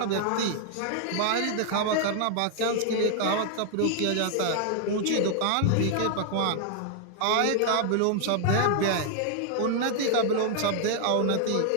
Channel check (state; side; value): different; both; correlation 0.00